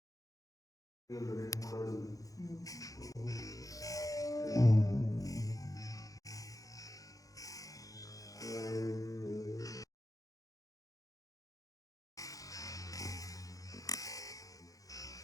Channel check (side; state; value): right; late; 0.17 ms